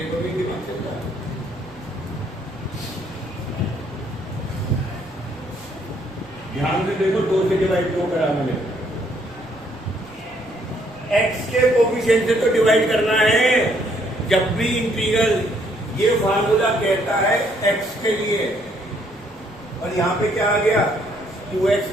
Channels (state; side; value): noise; right; rumble, 25 dB below the sound